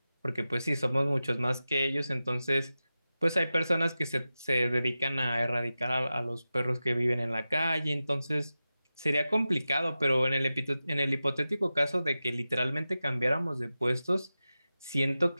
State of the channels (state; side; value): inverted; both; correlation -0.94